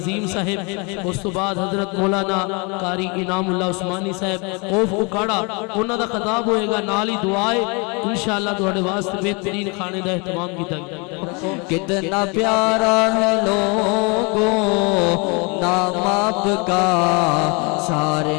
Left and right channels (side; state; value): right; quieter; 30.7 dB